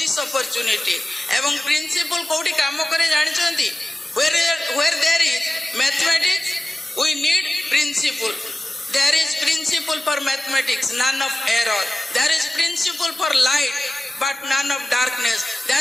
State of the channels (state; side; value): normal; both; correlation 0.96